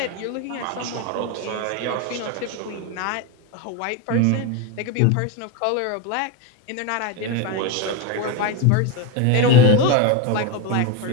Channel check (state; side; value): different; both; correlation 0.04